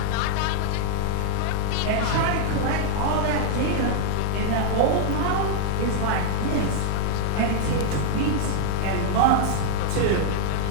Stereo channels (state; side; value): different; both; correlation -0.01